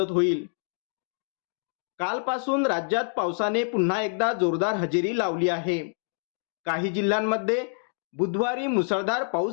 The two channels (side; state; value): right; silent; 60 dB below the other